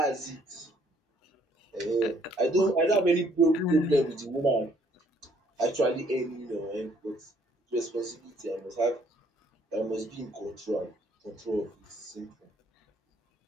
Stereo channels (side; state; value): both; normal; correlation 0.64